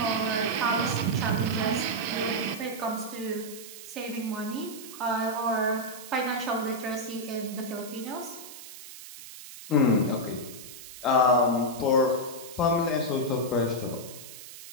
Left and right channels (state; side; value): noise; right; hiss, 14 dB below the sound